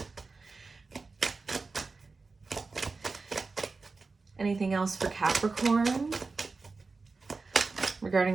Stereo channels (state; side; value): quieter; left; 4.1 dB